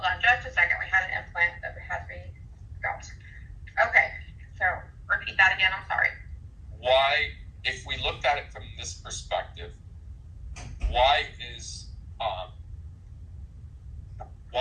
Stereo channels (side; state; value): both; identical; correlation 1.00